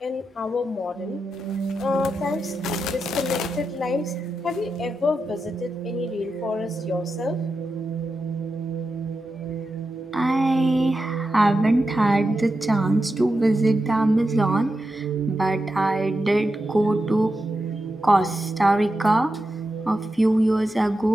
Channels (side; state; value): both; normal; correlation 0.89